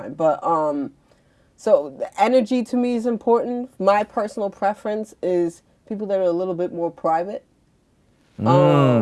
But so the energy to me is important. My personal preference is people that are a little bit more private.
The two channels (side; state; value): both; identical; correlation 1.00